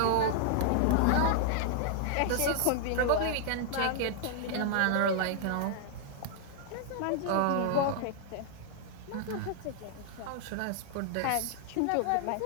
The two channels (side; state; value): both; different; correlation 0.00